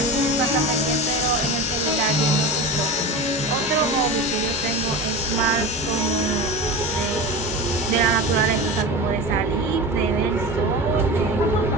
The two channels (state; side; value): normal; both; correlation 0.28